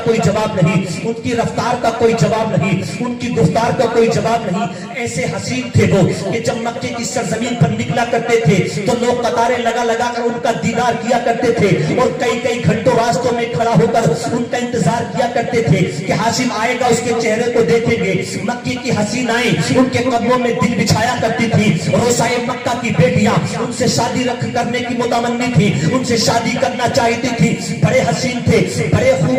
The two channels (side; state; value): both; identical; correlation 1.00